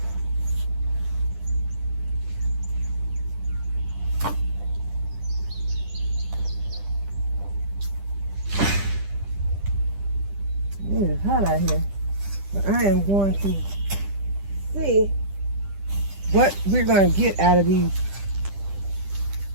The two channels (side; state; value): left; late; 10 ms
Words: It is hot out here, but I am going to see what we're going to get out of these